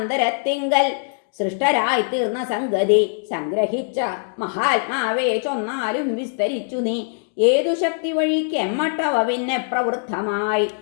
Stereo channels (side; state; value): right; silent; digital silence